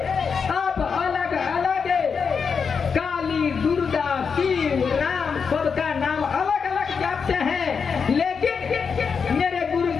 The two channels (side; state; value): right; quieter; 5.9 dB